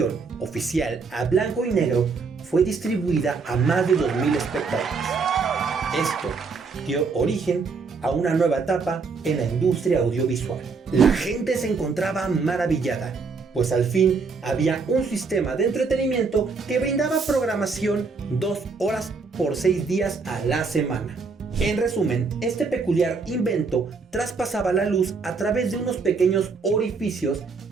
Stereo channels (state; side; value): quieter; left; 4.7 dB